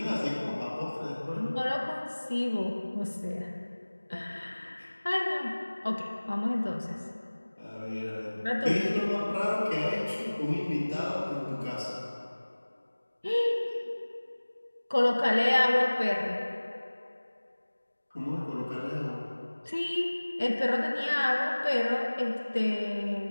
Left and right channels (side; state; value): both; inverted; correlation -1.00